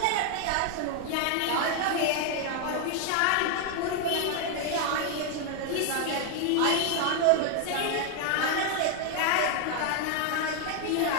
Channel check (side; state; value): both; different; correlation 0.01